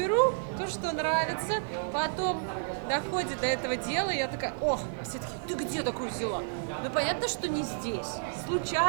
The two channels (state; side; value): silent; left; 57 dB below the other